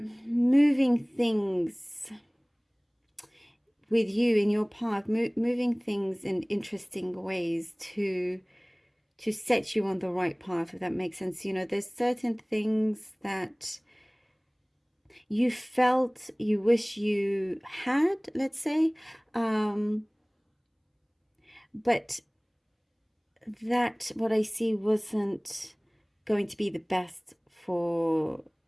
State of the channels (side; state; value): both; identical; correlation 1.00